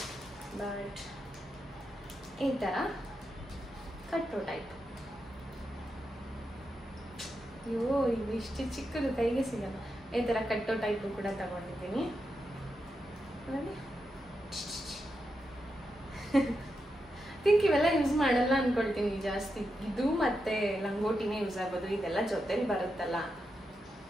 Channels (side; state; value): both; normal; correlation 0.86